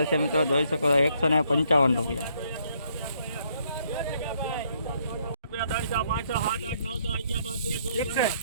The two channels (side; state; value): both; inverted; correlation -0.70